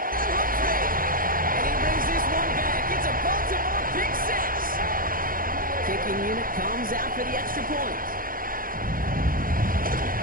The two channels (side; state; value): left; late; 0.41 ms